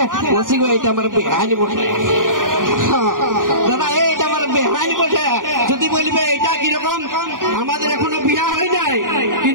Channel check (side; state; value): left; late; 0.89 ms